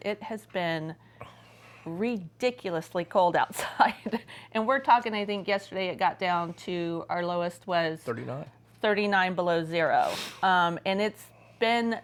it has been ridiculously cold outside. And we're talking, I think yesterday it got down to, our lowest was 39 below zero. And it's been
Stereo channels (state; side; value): identical; both; correlation 1.00